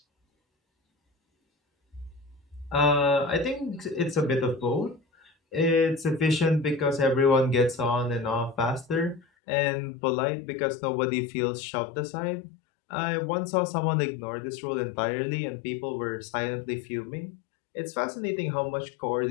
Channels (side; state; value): right; drops out; at 9.2 s